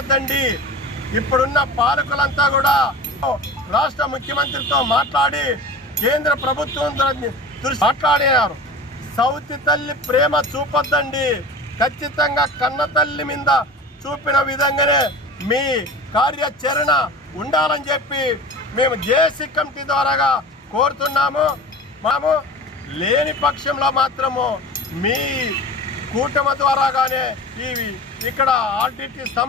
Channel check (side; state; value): both; normal; correlation 0.34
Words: ఇప్పుడున్న పాలకులంతా కూడా రాష్ట్ర ముఖ్యమంత్రితో మాట్లాడి కేంద్ర ప్రభుత్వం దృష్టి మాట్లాడినారు. సౌతి తల్లి ప్రేమ చూపొద్దండి, ఖచ్చితంగా కన్న తల్లి మీద చూపిన విధంగానే మీ కార్యాచరణ ఉండాలని చెప్పి మేము జేఏసీ కమిటీ ద్వారాగా కోరుతున్నాము. మేము లేని పక్షంలో మాత్రము మీ కూటమి ద్వారాగానే ఇక్కడ ఆర్డిటి